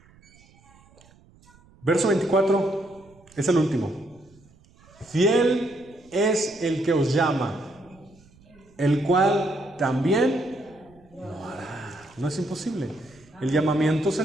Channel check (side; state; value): right; noise; rumble, 28 dB below the sound